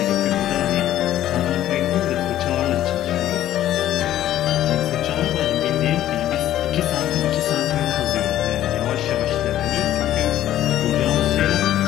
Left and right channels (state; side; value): quieter; right; 12.7 dB